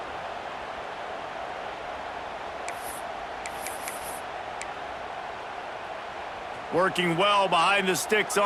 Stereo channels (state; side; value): identical; both; correlation 1.00